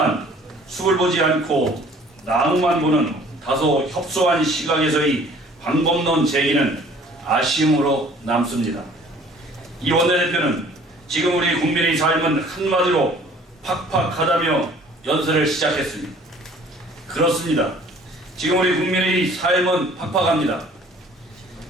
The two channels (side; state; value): both; normal; correlation 0.53